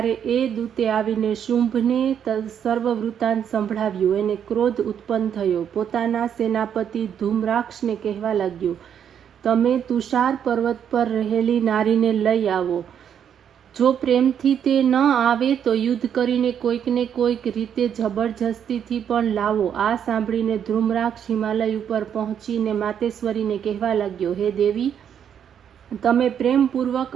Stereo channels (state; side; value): quieter; left; 8.6 dB